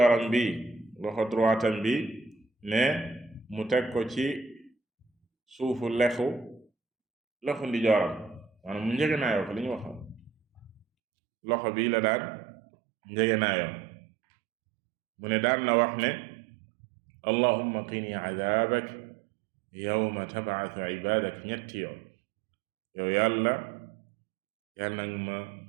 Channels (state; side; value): drops out; left; at 10.9 s